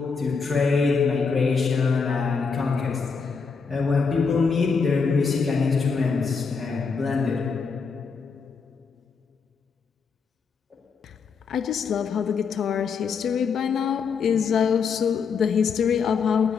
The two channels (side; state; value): right; quieter; 5.4 dB